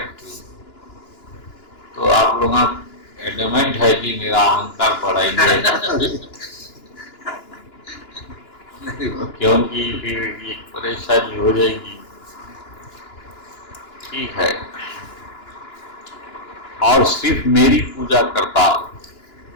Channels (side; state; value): right; late; 2.9 ms